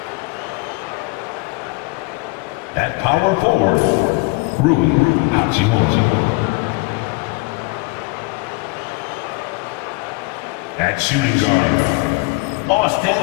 At power forward, Rui Hachimura. At shooting guard,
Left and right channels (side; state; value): right; quieter; 26.1 dB